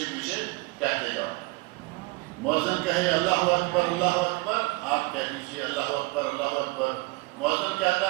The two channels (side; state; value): left; quieter; 24.6 dB